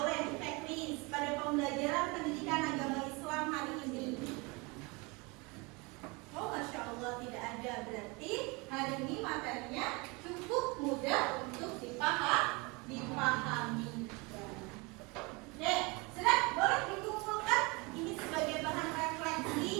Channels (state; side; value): quieter; left; 27.4 dB